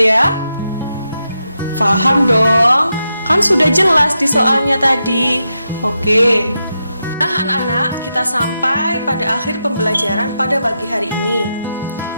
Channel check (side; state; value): both; inverted; correlation -0.86